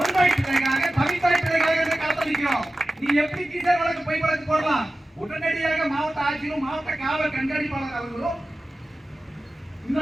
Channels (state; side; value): normal; both; correlation 0.95